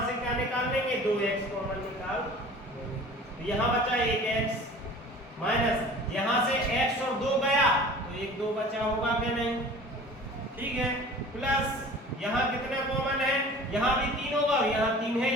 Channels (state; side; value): normal; both; correlation 0.43